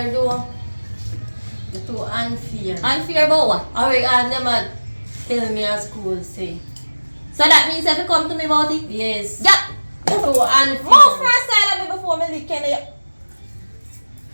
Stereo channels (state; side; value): inverted; both; correlation -1.00